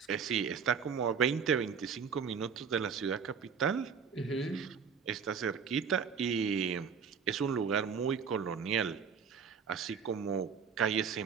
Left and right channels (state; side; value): quieter; left; 6.5 dB